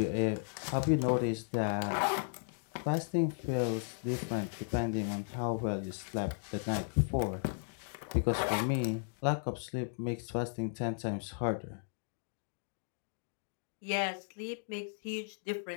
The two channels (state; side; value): silent; right; digital silence